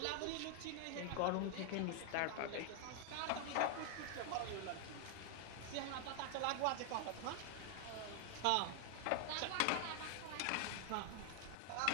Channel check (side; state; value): both; different; correlation 0.00